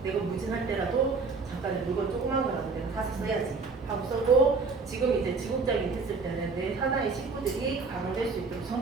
내가 무진할 때라도 잠깐 물건 조그만 거라도 내가 사서 써야지 하고 써도, 지금 이제 지국장이 됐을 때는 내 산하의 식구들이 가동될 수 있도록,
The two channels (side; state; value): left; quieter; 4.4 dB